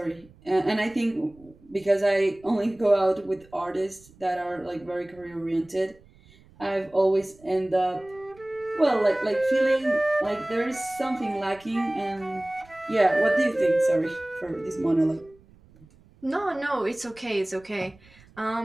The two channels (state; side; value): noise; right; rumble, 27 dB below the sound